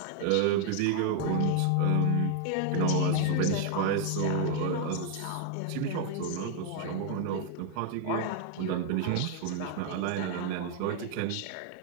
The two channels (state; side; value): different; both; correlation 0.00